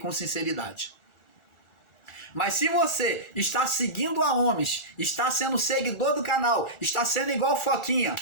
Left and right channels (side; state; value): right; late; 1.4 ms